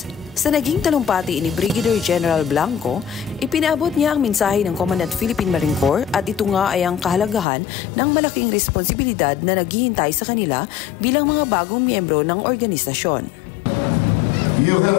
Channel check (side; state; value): right; drops out; at 7.5 s